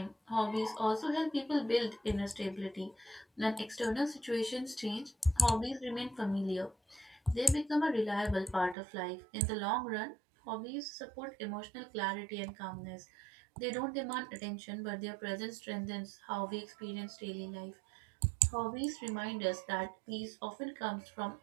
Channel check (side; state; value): left; drops out; at 8.8 s